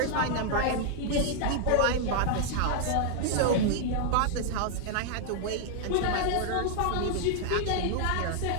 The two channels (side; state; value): both; different; correlation 0.00